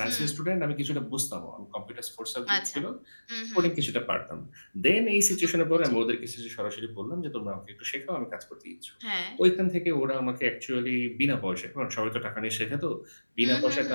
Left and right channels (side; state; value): both; inverted; correlation -1.00